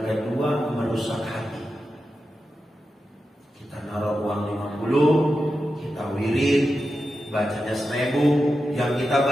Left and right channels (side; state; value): both; normal; correlation 0.90